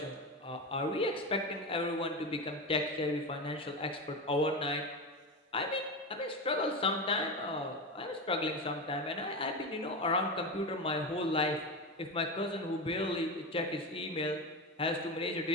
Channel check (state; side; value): normal; both; correlation 0.19